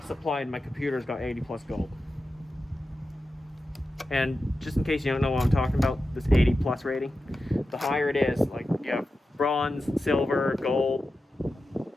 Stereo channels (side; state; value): both; normal; correlation 0.92